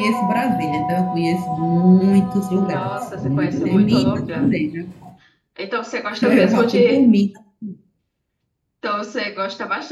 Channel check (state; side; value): identical; both; correlation 1.00